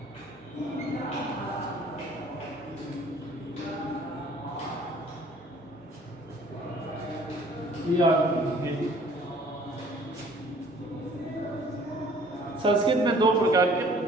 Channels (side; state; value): both; normal; correlation 0.54